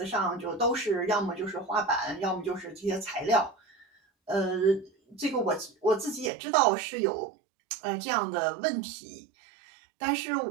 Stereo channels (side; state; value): left; drops out; at 6.3 s